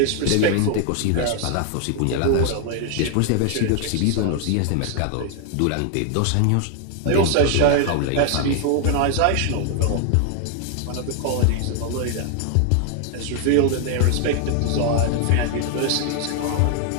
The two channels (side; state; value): both; different; correlation 0.00